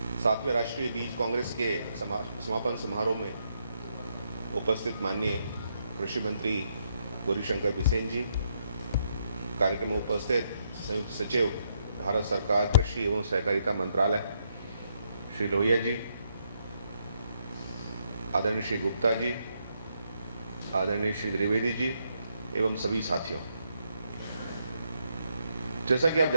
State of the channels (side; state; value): both; inverted; correlation -0.77